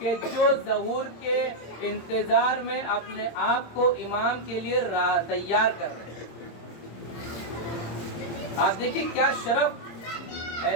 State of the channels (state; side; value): late; right; 26 ms